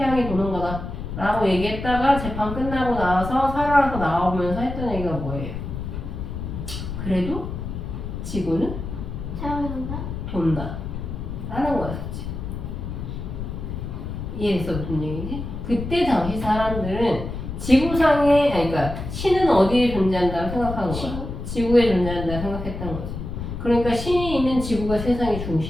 도는 거다. 라고 얘기했다가 재판 끝나고 나와서 살아서 나오면서 했던 얘기가 뭐예요? 그래도 지구는 사랑한다. 돈다. 라는 거였지. 이해했어? 무슨 얘기지? 그때 당시 사람들은 지구상에, 아니, 그러니까 신은 어디에 존재한다고 생각한 거야? 지구에 존재한다고 생각했던 거지. 그러니까 신이 있는 지구가 세상의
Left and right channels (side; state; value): left; noise; rumble, 7 dB below the sound